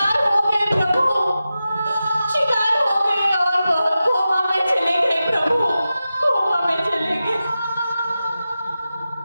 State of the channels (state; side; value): inverted; both; correlation -0.93